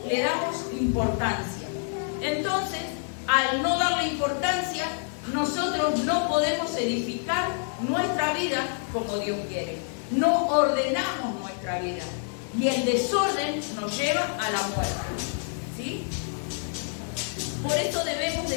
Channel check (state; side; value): silent; right; 56 dB below the other